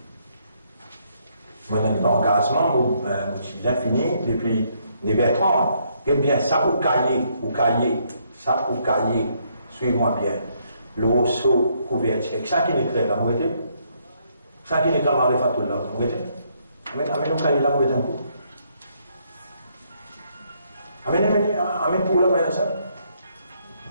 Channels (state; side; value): inverted; both; correlation -0.72